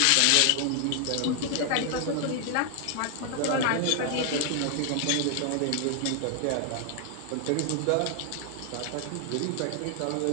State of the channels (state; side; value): different; both; correlation 0.00